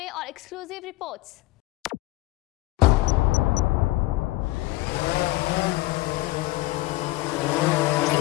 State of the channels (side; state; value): right; quieter; 19.2 dB